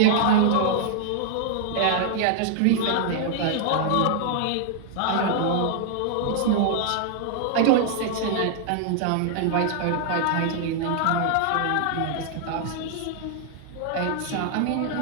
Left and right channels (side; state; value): both; different; correlation 0.00